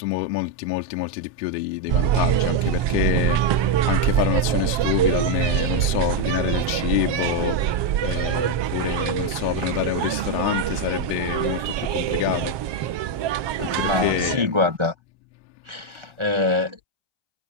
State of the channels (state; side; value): late; left; 1.2 ms